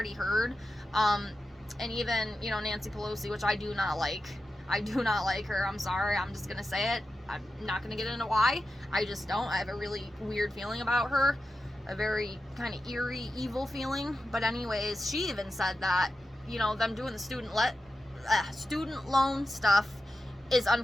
heard, and even, you know, Nancy Pelosi, which I do not like. I do not like her. I'm sorry. I'm just going to say it. I'm not going to get into why. I just don't. I have a really weird feeling about her. A very kind of eerie, evil feeling. But anyways, she even said that, you know, them doing the student loan stuff is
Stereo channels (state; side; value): normal; both; correlation 0.91